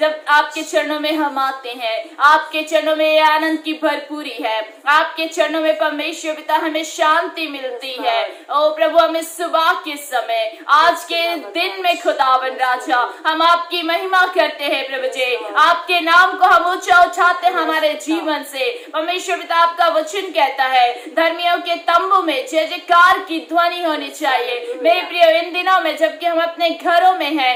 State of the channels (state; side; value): identical; both; correlation 1.00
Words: आपके चरणों में हम आते हैं, आपके चरणों में आनंद की भरपूरी है, आपके चरणों में परमेश्वर पिता हमें शांति मिलती है। ओ प्रभु, हमें सुबह के समय, आज के दिन में खुदावन राजा हम आपकी महिमा करते हैं प्रभु जी, आपके नाम को हम ऊंचा उठाते हैं हमारे जीवन से। परमेश्वर पिता, आपका वचन कहता है धर्मियों के तंबू में जय जयकार की ध्वनि होनी चाहिए। मेरे प्रिय, इन दिनों में जबकि हम अपने घरों में